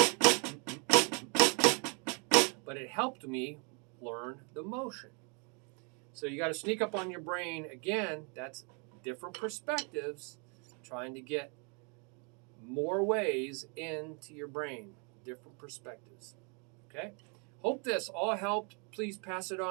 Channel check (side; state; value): left; quieter; 35.9 dB